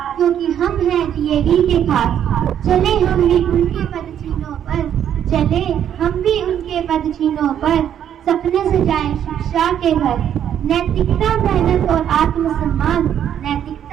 क्योंकि हम हैं डीएवी के खास। चले हम भी उनके पदचिन्हों पर, चले हम भी उनके पदचिन्हों पर, सपने सजाएं शिक्षा के घर। नैतिकता मेहनत और आत्मसम्मान,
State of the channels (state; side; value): quieter; left; 9.7 dB